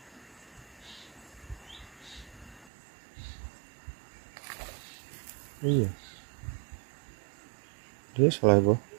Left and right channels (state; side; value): drops out; left; at 2.7 s